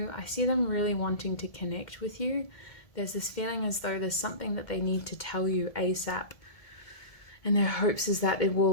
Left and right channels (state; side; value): late; right; 1.7 ms